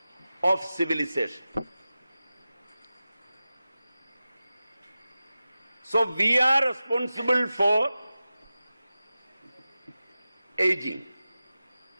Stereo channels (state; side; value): inverted; both; correlation -0.95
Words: of civilization. So we are responsible for aging.